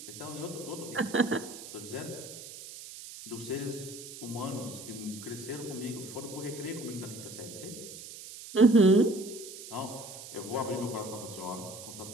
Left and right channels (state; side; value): noise; right; hiss, 13 dB below the sound